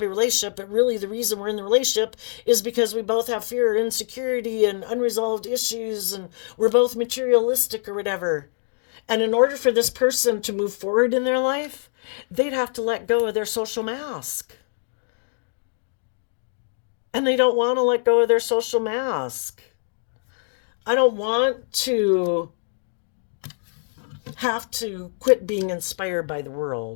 relationship. But really, the reason we're in the relationship is because we both have fear, insecurity, and unresolved issues, and we're both materialistic or whatever. And in order for this person to move forward in their life, they'd have to let go of their social mask. And they don't want to let go of their social mask. I don't want to have to quit being inspired by the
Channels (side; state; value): right; silent; digital silence